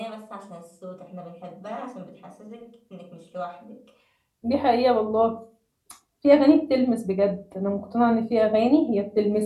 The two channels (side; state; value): both; identical; correlation 1.00